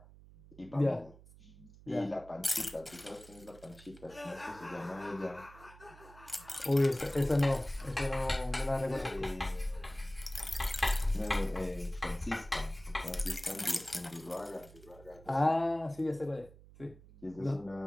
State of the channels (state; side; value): noise; right; hum, 21 dB below the sound